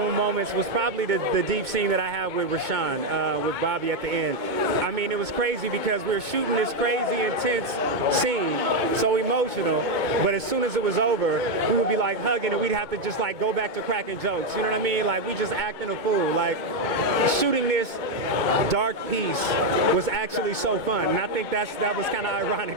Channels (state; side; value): late; left; 2.2 ms